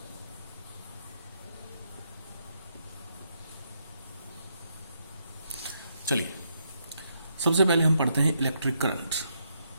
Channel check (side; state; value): both; inverted; correlation -0.78